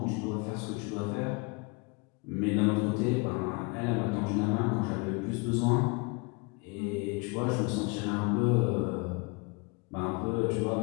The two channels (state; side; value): quieter; right; 29.2 dB